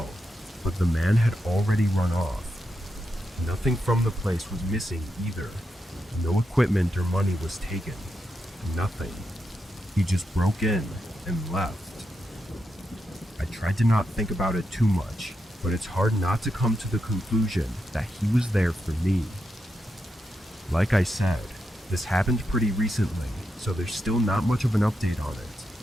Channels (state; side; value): normal; both; correlation 0.85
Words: but the man had already run off. Nothing from the place was missing either. No equipment or money was taken. Nothing. He just broke in and left. I tried to not think about it too much, but it's hard not to come to the conclusion that he was there for me. Like I said, this happened pretty recently, so there's still not much of an update on